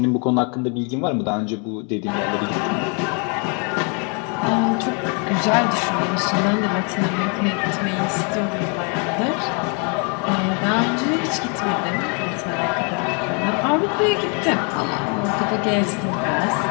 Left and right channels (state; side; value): quieter; right; 36.3 dB